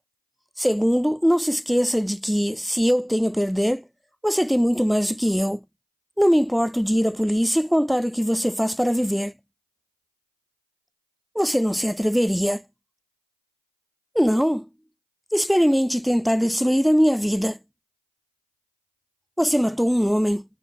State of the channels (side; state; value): both; identical; correlation 1.00